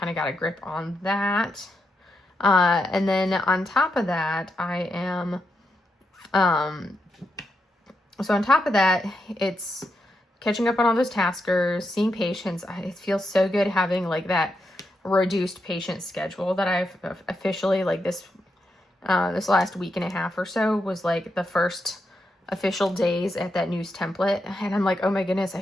of got a grip on that. And then on top of that, I am, so on top of that, it's catching up on all those taskers, seeing patients. It feels so good having like that reduced patient schedule that I've officially, like this last week and a half or so was like the first official days at that news template. And I'm like, oh my goodness, I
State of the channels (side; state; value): both; normal; correlation 0.84